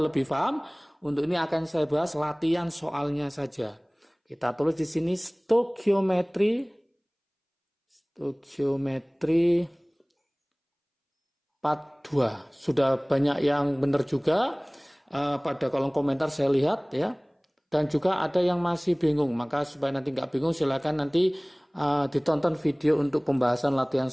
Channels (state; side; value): identical; both; correlation 1.00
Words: lebih paham. Untuk ini akan saya bahas latihan soalnya saja. Kita tulis di sini stoikiometri part 2. Sudah banyak yang benar juga pada kolom komentar saya lihat ya. Dan juga ada yang masih bingung. Maka supaya nanti nggak bingung silakan nanti ditonton video untuk pembahasan latihan